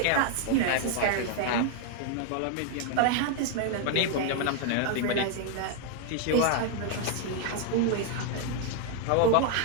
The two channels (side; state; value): both; different; correlation 0.00